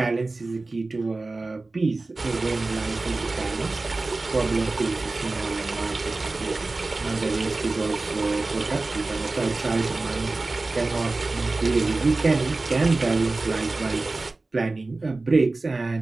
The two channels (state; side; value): quieter; left; 3.3 dB